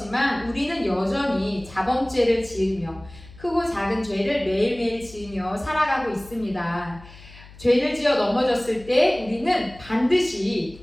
우리는 여전히 자범죄를 지으며 크고 작은 죄를 매일매일 지으며 살아가고 있습니다. 죄를 지어 넘어졌을 때 우리는 반드시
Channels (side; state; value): left; noise; hum, 20 dB below the sound